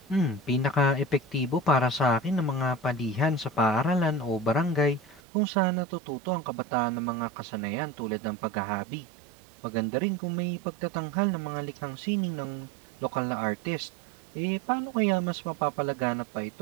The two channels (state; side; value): drops out; left; at 5.2 s